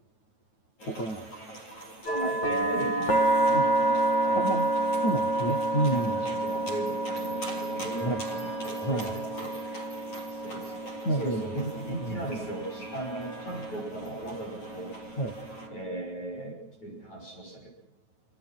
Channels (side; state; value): right; late; 9.3 ms